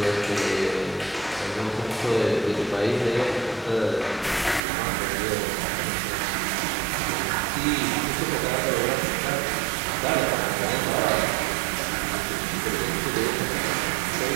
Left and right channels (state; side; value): drops out; left; at 4.6 s